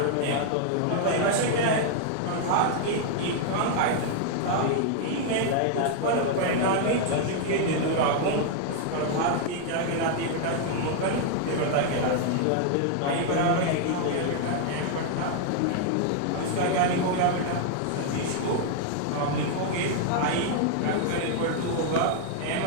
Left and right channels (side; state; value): both; different; correlation 0.00